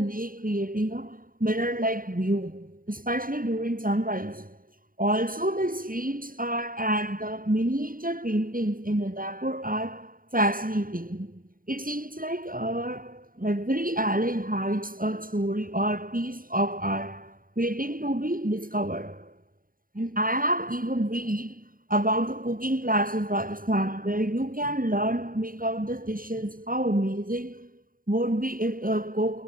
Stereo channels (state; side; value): late; left; 0.41 ms